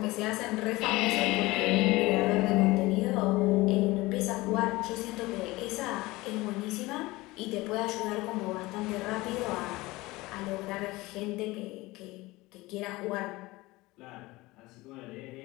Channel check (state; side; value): quieter; right; 20.6 dB